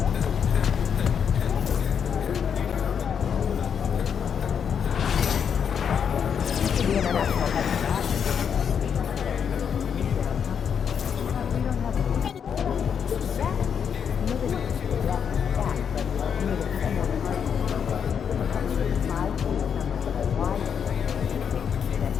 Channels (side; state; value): right; quieter; 7.5 dB